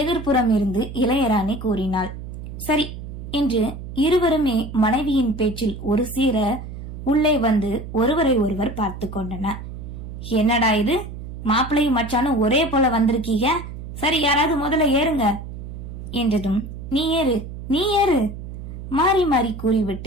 எதிர்ப்புறம் இருந்து இளையராணி கூறினாள். சரி என்று இருவருமே மனைவியின் பேச்சில் ஒரு சீர உள்ளே வந்து ஒருவரை ஒருவர் பார்த்து கொண்டனர். என்னடா இது, மாப்பிள்ளையும் மச்சானும் ஒரே போல வந்திருக்கீங்க, சரி யாராவது முதல்ல ஏறுங்க என்றதும் நீ ஏறு நீ ஏறு மாறி மாறி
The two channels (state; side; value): noise; right; hum, 10 dB below the sound